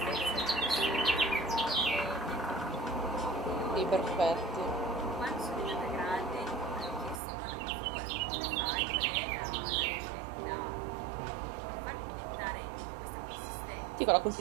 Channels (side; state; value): left; drops out; at 7.2 s